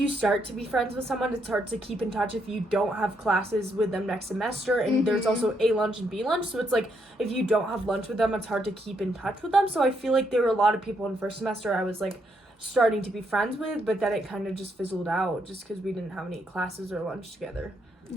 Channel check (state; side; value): normal; both; correlation 0.76